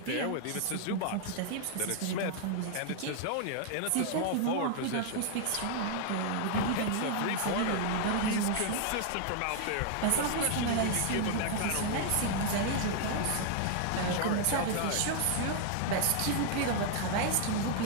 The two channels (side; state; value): both; different; correlation 0.00